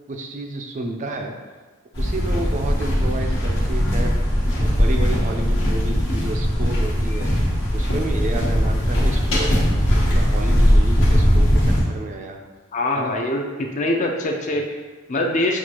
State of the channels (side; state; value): both; normal; correlation 0.86